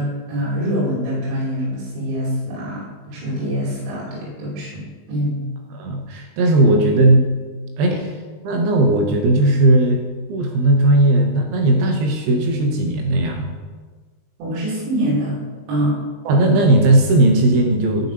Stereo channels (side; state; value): left; late; 20 ms